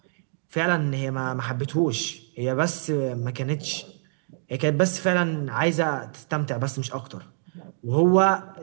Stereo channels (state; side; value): silent; left; digital silence